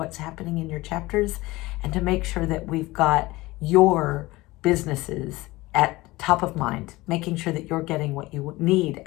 happening in your chapters and to make sure that we've got your businesses at top of mind, making sure that you're getting what you need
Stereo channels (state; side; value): quieter; right; 20.1 dB